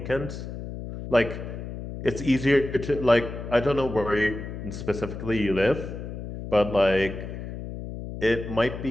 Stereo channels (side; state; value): left; noise; hum, 8 dB below the sound